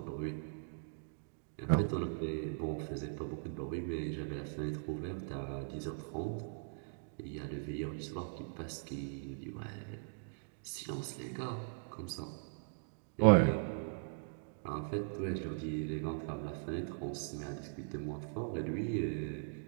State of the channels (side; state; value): left; silent; digital silence